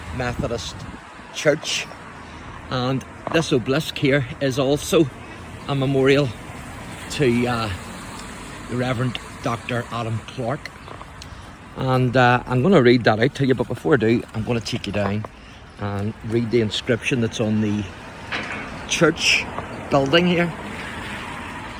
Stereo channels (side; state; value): both; identical; correlation 1.00